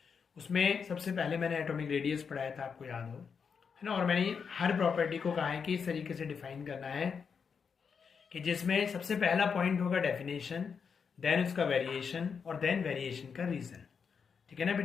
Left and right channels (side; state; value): right; quieter; 6.2 dB